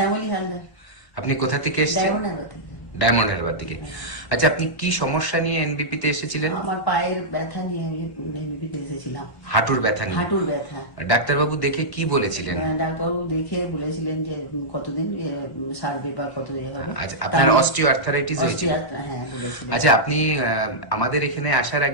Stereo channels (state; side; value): late; right; 1.1 ms